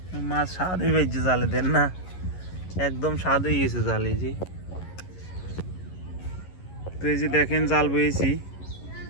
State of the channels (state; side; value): late; right; 11 ms